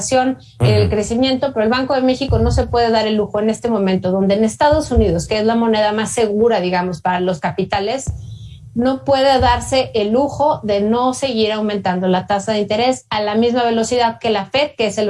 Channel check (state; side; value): identical; both; correlation 1.00